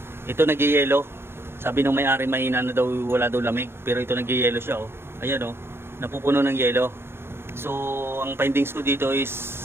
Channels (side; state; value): left; late; 0.11 ms